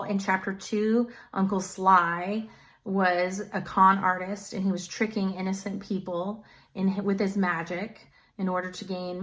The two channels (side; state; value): both; identical; correlation 1.00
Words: in chapter 2, Uncle Sly was a con artist and he was tricking innocent people with his magic in order to